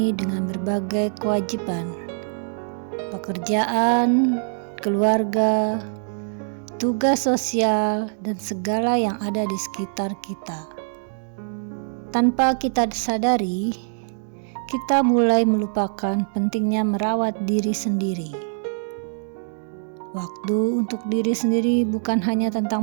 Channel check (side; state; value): left; silent; digital silence